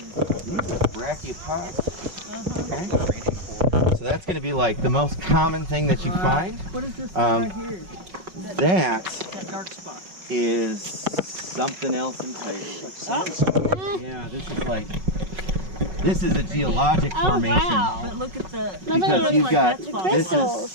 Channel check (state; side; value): late; left; 5.4 ms